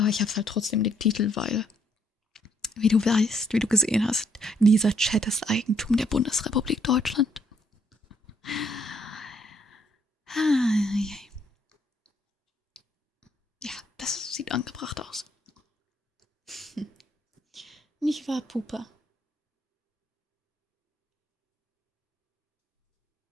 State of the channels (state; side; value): normal; both; correlation 0.69